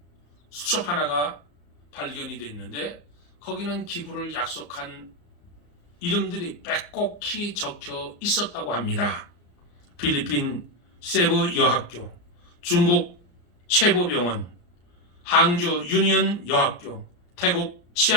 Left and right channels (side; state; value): right; late; 34 ms